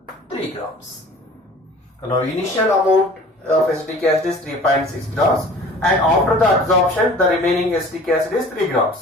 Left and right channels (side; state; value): both; normal; correlation 0.46